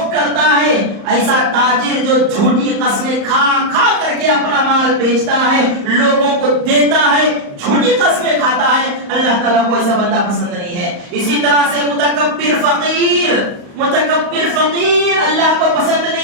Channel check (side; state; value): left; late; 35 ms